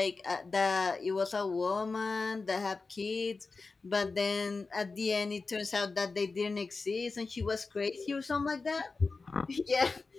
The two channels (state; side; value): quieter; right; 4.1 dB